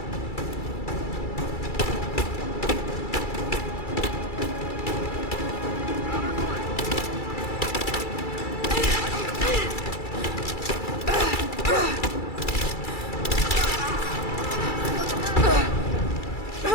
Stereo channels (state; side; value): late; right; 2.3 ms